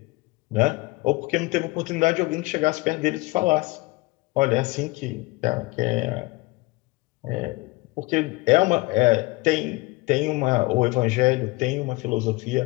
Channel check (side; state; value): right; quieter; 22.8 dB